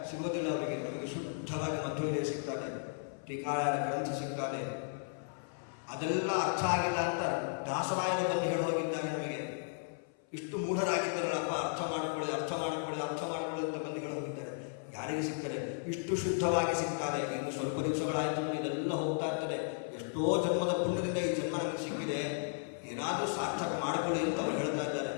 ಸಿಗೋದಿಲ್ಲ ಅವರಿಗೆ. ನಮಗೆ ಶುದ್ಧವಾಗಿ ಮಧ್ವವಿಜಯ ಸಿಗ್ತಾರೆ, ಟೀಕಾಯನ ಗ್ರಂಥ ಸಿಗ್ತಾರೆ. ಅದೆಲ್ಲ ಅರ್ಥ ಆಗಿಲ್ಲ ಅಂತ ದಾಸರಾಯರು ಬಂದು ಹೇಳಿ ಹೋಗಿದ್ದಾರೆ ನಮಗೆ. ಇಷ್ಟು ಮೂಢರಾಗಿದ್ದಾರಲ್ಲಪ್ಪ, ಅರ್ಥ ಮಾಡ್ಕೊಳ್ಳಿ ಅಂತ ಬಂದು ಹೇಳಿ ಹೋಗಿದ್ದಾರೆ. ಯಾರಿಗೆ ಸಿಗ್ತಾರೆ? ಇಷ್ಟು ಶುದ್ಧವಾಗಿ ಸಿಗ್ತಾರೆ. ಇನ್ನು ಸ್ವಲ್ಪ ದಿವಸಗಳಾಯ್ತು, ಇದೆಲ್ಲ ಹೋಗ್ತಾ ಇರ್ತದೆ. ಎಷ್ಟೋ ಜನ್ಮದ ಪುಣ್ಯದಿಂದ ಈ ಜನ್ಮ ನಮಗೆ ಸಿಕ್ಕಿದೆ, ಏನಾದರೂ ಸಾರ್ಥಕ ಮಾಡಿಕೊಳ್ಳಿ ಅಂತ ಅವರು ಹೇಳ್ತಾ ಇದ್ದಾರೆ.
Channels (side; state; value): right; silent; 55 dB below the other